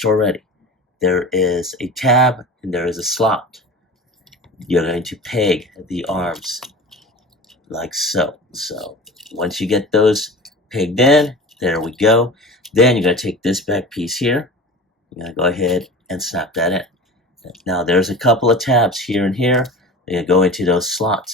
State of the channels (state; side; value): normal; both; correlation 0.35